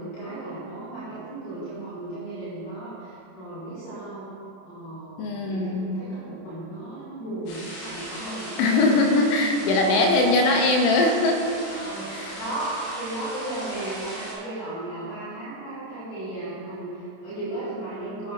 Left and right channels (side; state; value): right; late; 31 ms